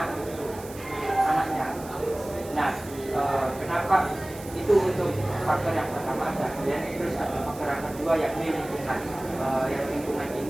Nah, kenapa itu untuk faktor yang pertama ada, dan terus ada faktor yang kedua yakni lingkungan. Yang lingkungan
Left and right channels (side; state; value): right; noise; hiss, 17 dB below the sound